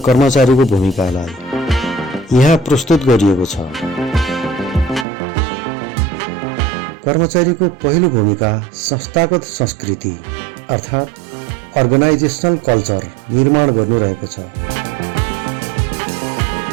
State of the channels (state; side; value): drops out; left; at 5.1 s